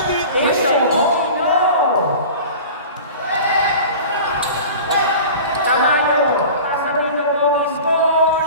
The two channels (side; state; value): both; inverted; correlation -0.38